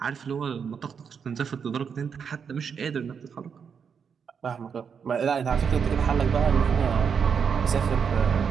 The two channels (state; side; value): quieter; left; 6.7 dB